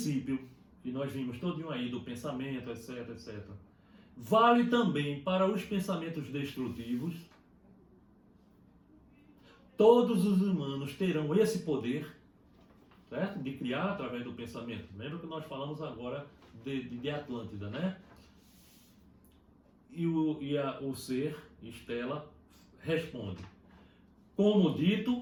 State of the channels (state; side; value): identical; both; correlation 1.00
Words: que nós vimos todinho aí, do pensamento, etc, vale também para os pensamentos destrutivos. Todos os humanos terão esse poder, certo? De criar através do pensamento. Lembra que nós falamos agora de Atlântida, né? E o ser, Estela, responde. Como